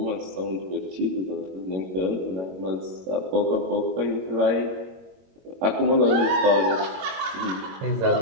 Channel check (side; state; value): left; late; 22 ms